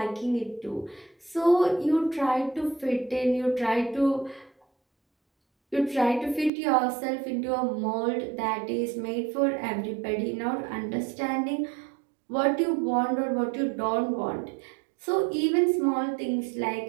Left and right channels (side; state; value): left; drops out; at 6.5 s